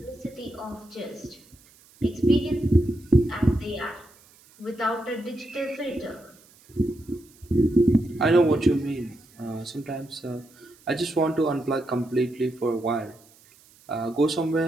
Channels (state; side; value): noise; right; hiss, 28 dB below the sound